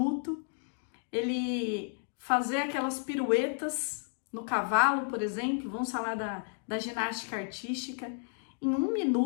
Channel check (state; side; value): silent; right; 56 dB below the other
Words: ele fazer aquelas piruetas no cavalo, por exemplo, vamos falar da ginástica artística, em 1